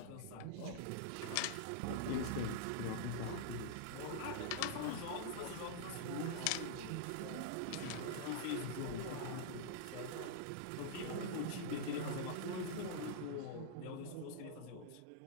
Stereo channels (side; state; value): both; different; correlation -0.01